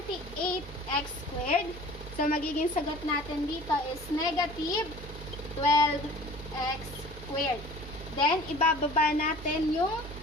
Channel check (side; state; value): both; normal; correlation 0.45